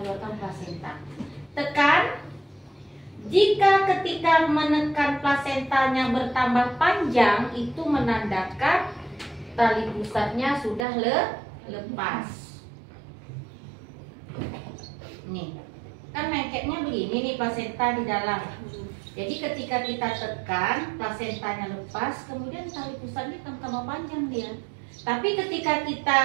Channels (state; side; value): drops out; left; at 10.9 s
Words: plasenta. Tekan. Jika ketika menekan plasentanya bertambah panjang, itu menandakan tali pusatnya sudah lepas. Nih, kan lengketnya begini nih plasenta di dalam. Jadi ketika kita tekan, plasentanya lepas, kemudian tali pusatnya tambah panjang dia. Tapi ketika kita